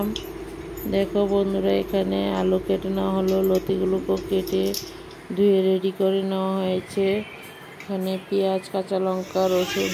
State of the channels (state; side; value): identical; both; correlation 1.00